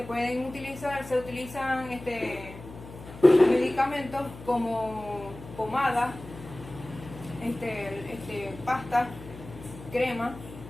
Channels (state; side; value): noise; left; hum, 15 dB below the sound